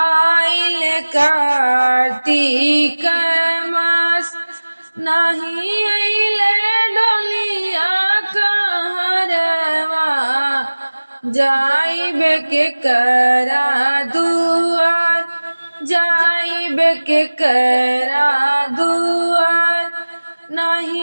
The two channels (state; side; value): inverted; both; correlation -1.00